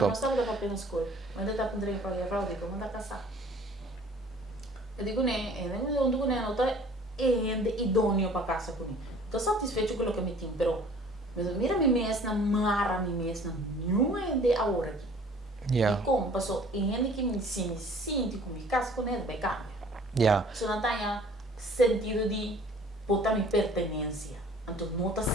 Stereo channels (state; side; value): normal; both; correlation 0.52